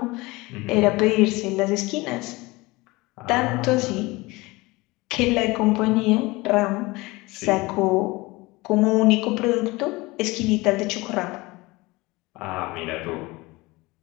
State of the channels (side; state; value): right; quieter; 22.3 dB